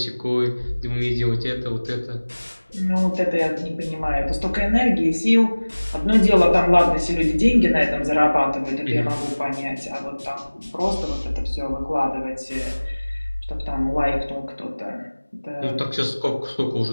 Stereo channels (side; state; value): both; inverted; correlation -1.00